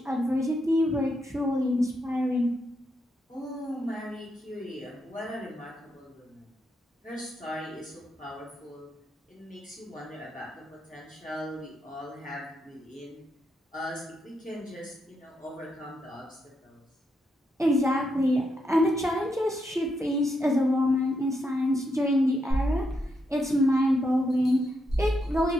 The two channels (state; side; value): normal; both; correlation 0.81